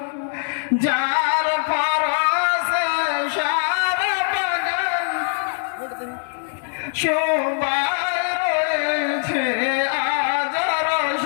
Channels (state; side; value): silent; right; digital silence